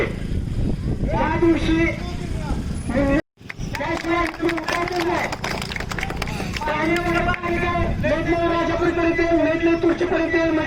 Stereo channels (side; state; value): both; identical; correlation 1.00